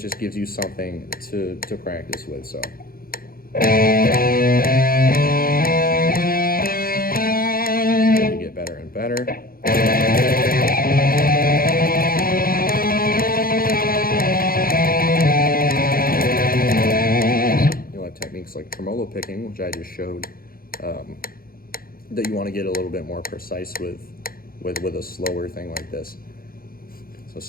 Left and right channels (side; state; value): right; late; 0.42 ms